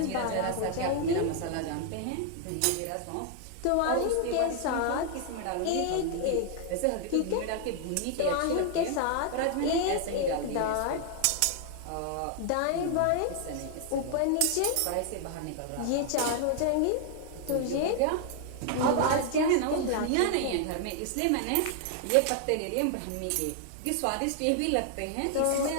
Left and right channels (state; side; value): different; both; correlation 0.00